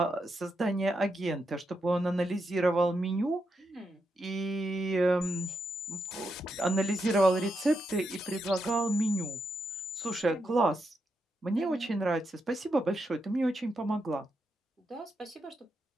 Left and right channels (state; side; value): normal; both; correlation 0.83